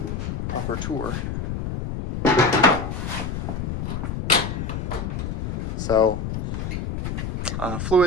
proper tour. So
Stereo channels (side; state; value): left; noise; rumble, 3 dB below the sound